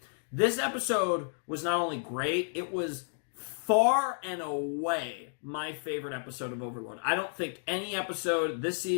This episode was not only great, it was far and away my favorite episode of Overlord. I don't think any episode this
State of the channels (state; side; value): silent; right; digital silence